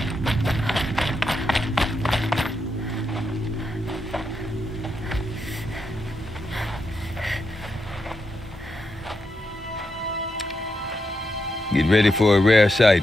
Get ready for a rare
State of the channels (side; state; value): both; normal; correlation 0.84